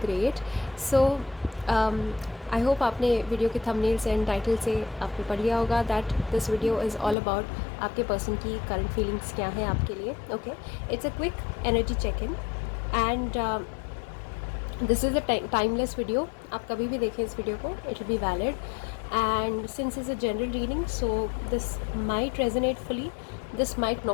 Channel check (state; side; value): drops out; right; at 7.2 s